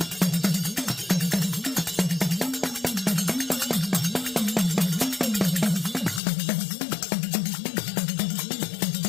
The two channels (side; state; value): right; drops out; at 6.2 s